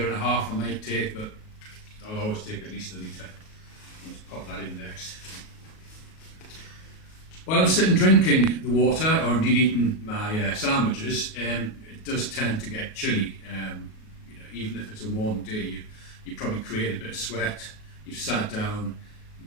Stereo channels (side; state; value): right; late; 37 ms